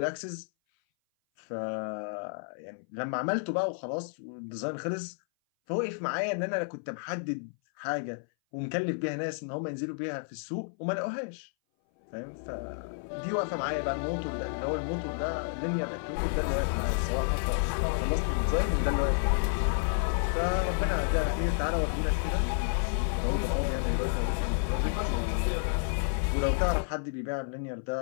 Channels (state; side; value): silent; right; 57 dB below the other